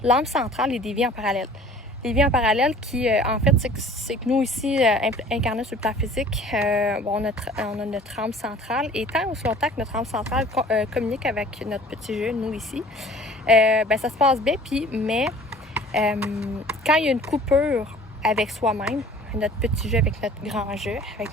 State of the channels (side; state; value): both; normal; correlation 0.48